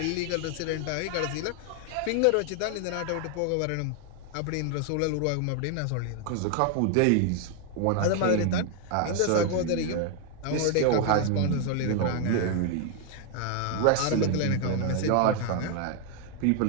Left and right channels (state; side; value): different; both; correlation 0.00